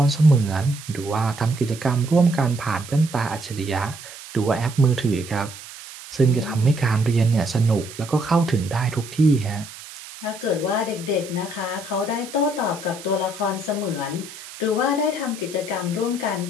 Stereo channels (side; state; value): right; noise; hiss, 15 dB below the sound